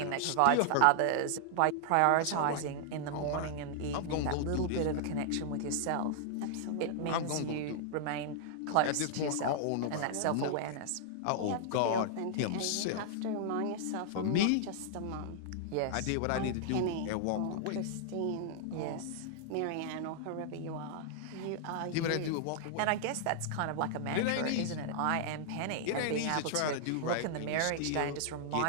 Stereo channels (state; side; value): different; both; correlation -0.01